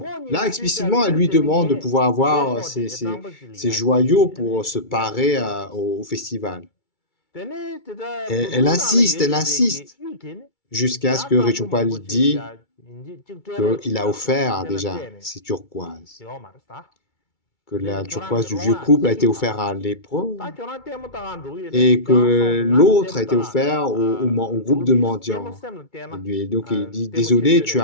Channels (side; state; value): right; late; 2.3 ms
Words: Là, explicitement, elle lui demande de pouvoir avoir ces joyaux pour se parer au festival. Et elle insiste, jusqu'à ce que Rechungpa lui dise qu'il a offert déjà ces turquoises. que la turquoise du vieux couple a été offerte à lépreux et que l'autre a été offert au groupe de mendiants. Et donc il dit, désolé,